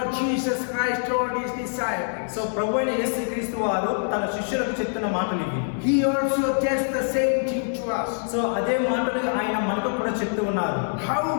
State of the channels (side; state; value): right; silent; 62 dB below the other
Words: Jesus Christ told his disciples. So ప్రభువైన యేసుక్రీస్తు వారు తన శిష్యులకు చెప్తున్న మాటలు ఇవి. He also tells the same thing to us. So అదే మాటలు ఆయన మనకు కూడా చెప్తూ ఉన్నారు. How